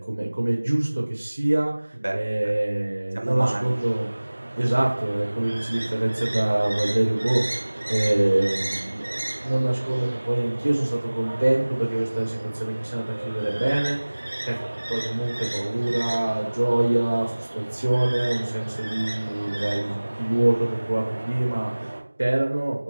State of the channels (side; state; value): both; inverted; correlation -1.00